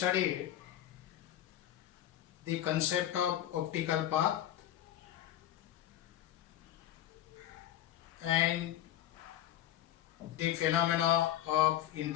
the concept of optical path and the phenomena of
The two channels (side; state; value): right; quieter; 12.3 dB